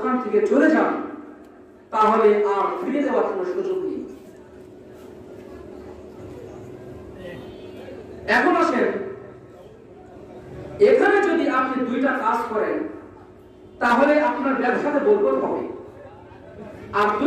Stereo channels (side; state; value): both; identical; correlation 1.00